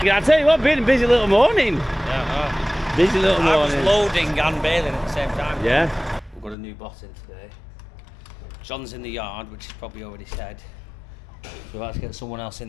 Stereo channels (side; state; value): right; drops out; at 6.6 s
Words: Yeah, I tell you what, been a busy little morning. Yeah, Busy little I was morning. loading and baling at the same time. Yeah. We've got a new boss in today. John's in the yard, which is probably already said. So we've had to get someone else in